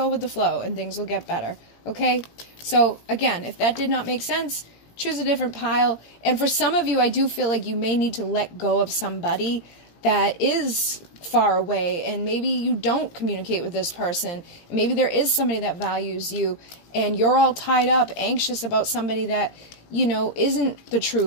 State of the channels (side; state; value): right; late; 18 ms